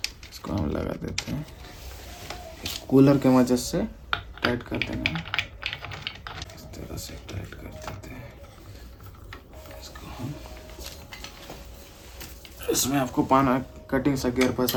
इसको हम लगा देते हैं। कूलर के मदद से टाइट कर देना है, इस तरह से टाइट कर देते हैं इसको हम। इसमें आपको पाना कटिंग सा गियर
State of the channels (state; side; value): identical; both; correlation 1.00